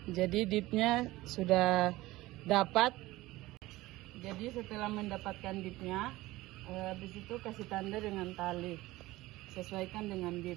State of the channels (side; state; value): left; quieter; 18.4 dB